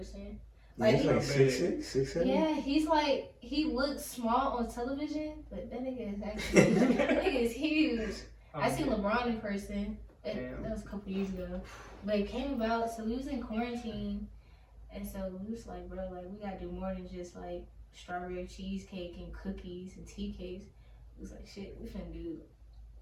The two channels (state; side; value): identical; both; correlation 1.00